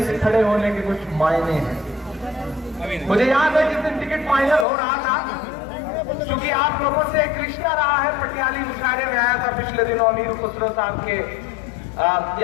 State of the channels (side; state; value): right; drops out; at 4.7 s